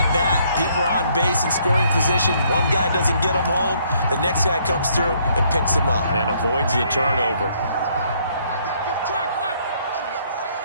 bat, people are on base in scoring position. One guy doesn't get him home. The next guy comes through and picks him up. And avoids the turnover.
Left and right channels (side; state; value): both; inverted; correlation -0.67